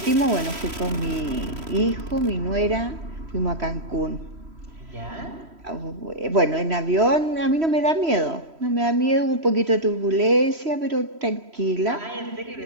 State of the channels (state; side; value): late; left; 3.1 ms